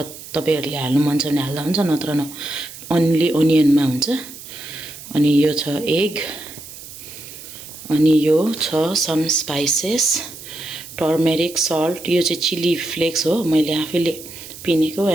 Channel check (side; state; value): right; noise; hiss, 15 dB below the sound